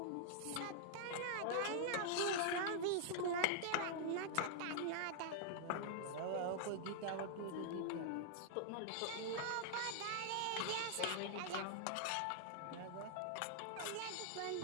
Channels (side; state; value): both; different; correlation -0.01